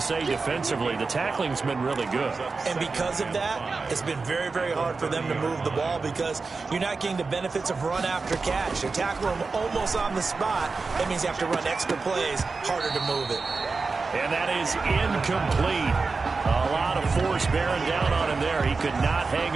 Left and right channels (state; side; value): quieter; left; 4.2 dB